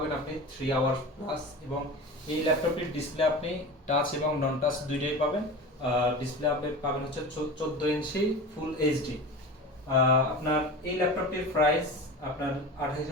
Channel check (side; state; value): both; normal; correlation 0.31